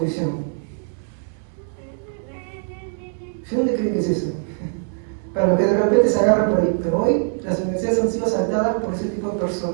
¿Dónde creen que es eso? Para los que de repente se agarran por ahí. Pero hoy las universidades han sido saltadas por ese tipo de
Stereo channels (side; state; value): left; silent; 64 dB below the other